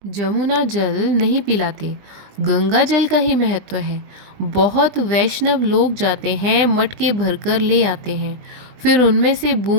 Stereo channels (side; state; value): left; late; 20 ms